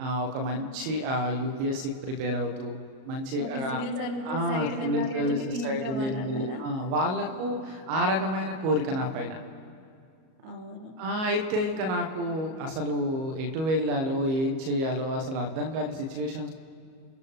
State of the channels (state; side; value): late; left; 38 ms